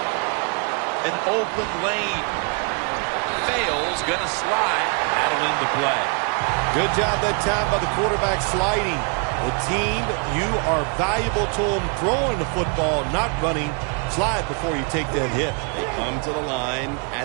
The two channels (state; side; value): quieter; left; 37.2 dB